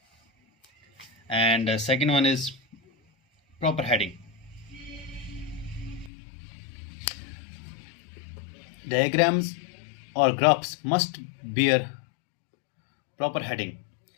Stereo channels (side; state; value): right; drops out; at 6.1 s